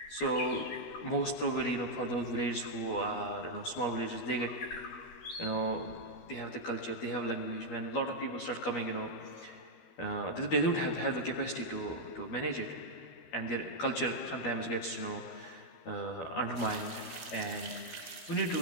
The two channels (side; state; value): right; late; 12 ms